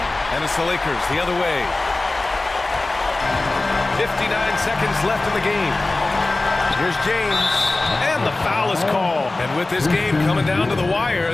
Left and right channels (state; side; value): quieter; right; 3.1 dB